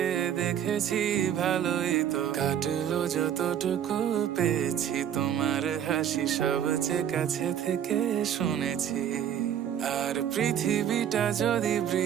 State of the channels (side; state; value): left; quieter; 9.6 dB